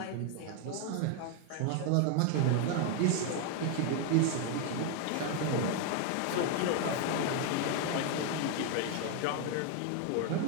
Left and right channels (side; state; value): both; different; correlation 0.01